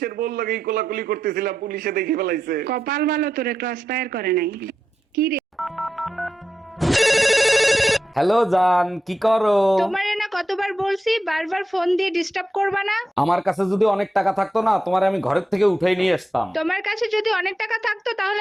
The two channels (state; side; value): normal; both; correlation 0.89